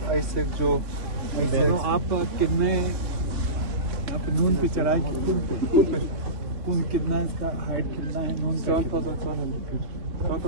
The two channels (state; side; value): late; left; 2.9 ms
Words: आईसेक जो तो आप कितने आप नून पे चढ़ाई कौन कितना इसका हाइट कितना है नून